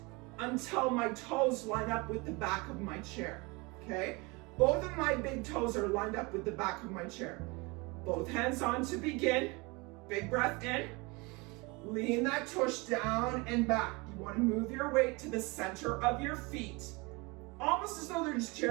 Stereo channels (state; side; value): quieter; left; 26.6 dB